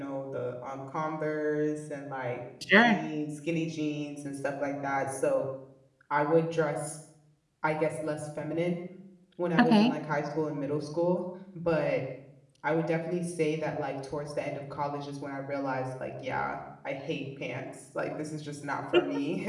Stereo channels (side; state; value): both; identical; correlation 1.00